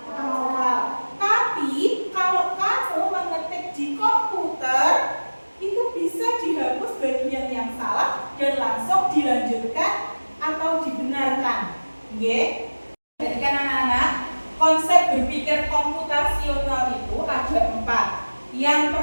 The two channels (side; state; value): both; inverted; correlation -1.00